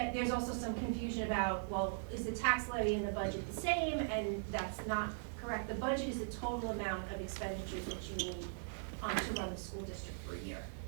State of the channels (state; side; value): silent; left; digital silence